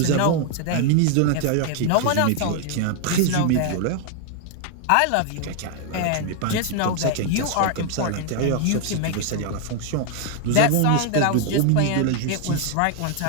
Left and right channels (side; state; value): both; different; correlation 0.00